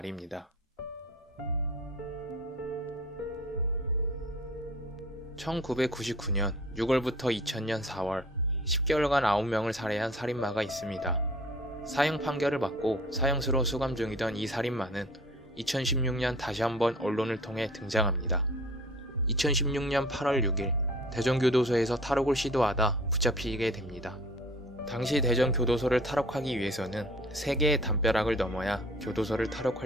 1999년 6월부터 2000년 4월 10개월간 9명을 살해한 살인마가 있습니다. 사형 판결을 받고 사형수로 수감 중이던 이 살인마는 2016년 다시 한번 언론을 통해 등장합니다. 2016년 8월 6일 대전교도소에서 탈옥을 시도하다 붙잡히게 됩니다. 당시 대전교도소를 탈옥하기 위해서는 3개의 담벼락을 넘어야 교도소를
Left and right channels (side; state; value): both; normal; correlation 0.48